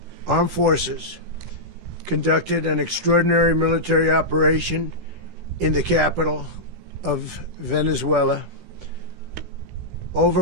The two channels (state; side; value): late; left; 16 ms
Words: Armed Forces conducted an extraordinary military operation in the capital of Venezuela.